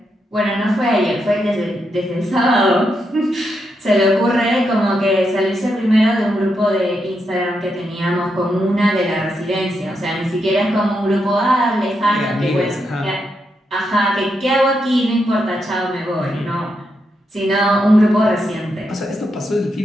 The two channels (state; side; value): normal; both; correlation 0.82